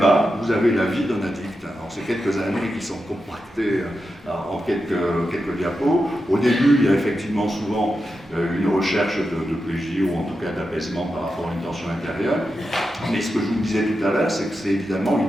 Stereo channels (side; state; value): both; normal; correlation 0.89